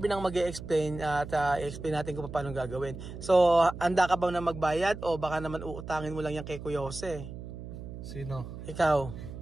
ang mag-e-explain at explain natin kung paano gagawin. So handa ka ba na magbayad o baka naman uutangin mo lang yan kay Kuya Jose? Sino? Ikaw.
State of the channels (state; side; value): noise; right; hum, 11 dB below the sound